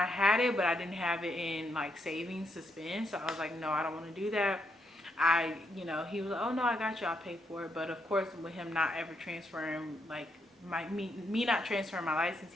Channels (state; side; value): normal; both; correlation 0.78